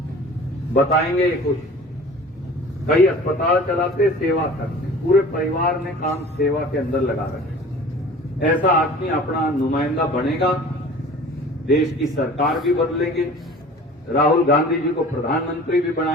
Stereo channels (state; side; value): normal; both; correlation 0.43